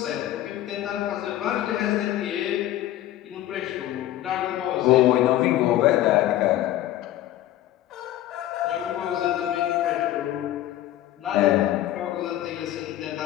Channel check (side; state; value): right; quieter; 13.7 dB